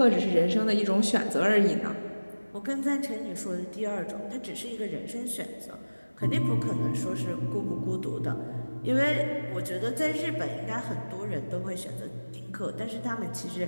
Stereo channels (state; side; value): inverted; both; correlation -1.00